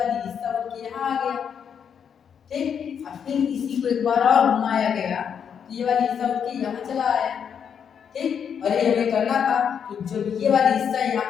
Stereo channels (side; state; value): right; quieter; 7.6 dB